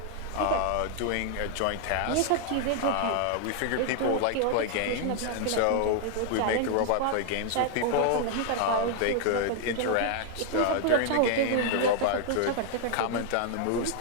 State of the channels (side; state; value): both; different; correlation 0.00